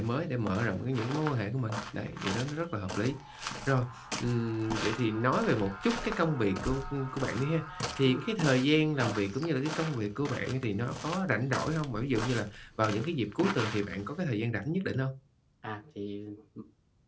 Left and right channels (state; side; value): identical; both; correlation 1.00